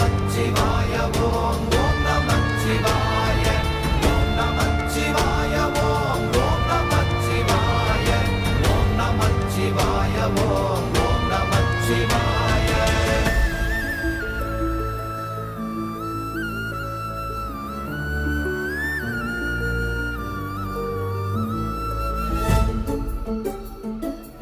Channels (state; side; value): identical; both; correlation 1.00